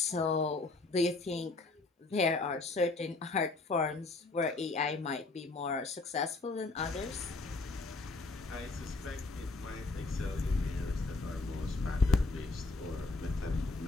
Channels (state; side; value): quieter; right; 3.4 dB